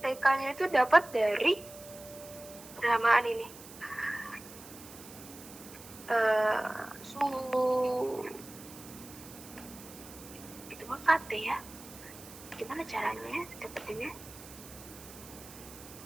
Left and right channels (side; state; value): right; noise; hiss, 17 dB below the sound